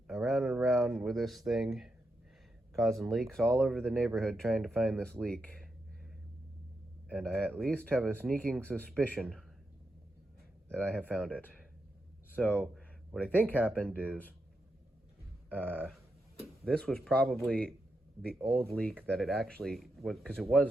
around and around with this thing, causing leaks all over the neighborhood trying to find this leak. And I at least have a sneaking suspicion that I have found it. So what I think happened is this was probably the old leak that it actually was, because it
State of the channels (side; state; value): both; normal; correlation 0.85